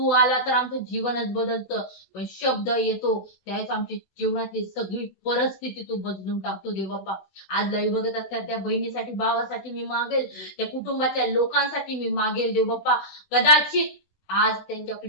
आला तर आमचं जीवनच बदलतं, पण शब्द येतो त्यावेळेस आमची जीवनातली सगळी परिस्थिती तू बदलून टाकतो देव बाप्पा. आज लाईव्ह बघत असतात त्या बहिणीसाठी, भावासाठी मी मागेल, त्या कुटुंबाच्या लोकांसाठी मी मागेल देव बाप्पा. कदाचित आज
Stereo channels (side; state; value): right; late; 16 ms